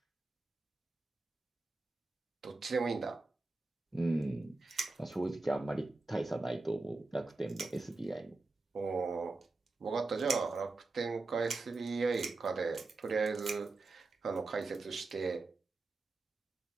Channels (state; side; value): quieter; left; 3.4 dB